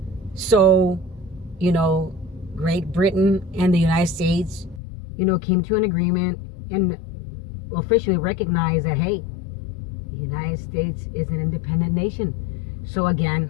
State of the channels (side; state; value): right; drops out; at 4.8 s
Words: So, Great Britain and the United States, came to an agreement and officially recognized that, hey, the United States is an independent nation. So